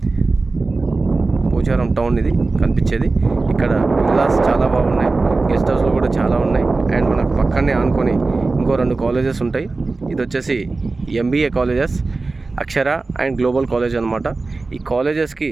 పోచారం టౌన్ ఇది కనిపించేది. ఇక్కడ విల్లాస్ చాలా బాగున్నాయి, గెస్ట్ హౌస్లు కూడా చాలా ఉన్నాయి. అండ్ మనకు పక్కనే ఆనుకొని ఇంకో 2 కాలేజెస్ ఉంటాయి. ఇది వచ్చేసి MBA colleges, Akshara and global college అనమాట. ఈ కాలేజెస్కి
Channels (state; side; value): quieter; left; 3.6 dB